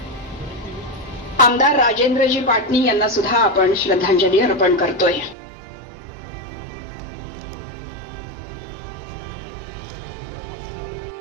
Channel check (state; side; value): drops out; left; at 5.4 s